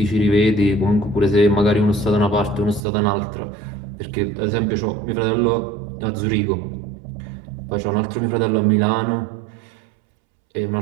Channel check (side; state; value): left; drops out; at 2.8 s